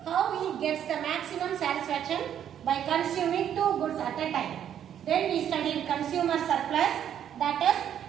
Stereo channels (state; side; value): quieter; left; 9.7 dB